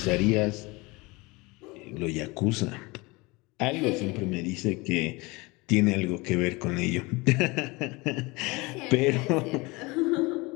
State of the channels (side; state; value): right; quieter; 24.6 dB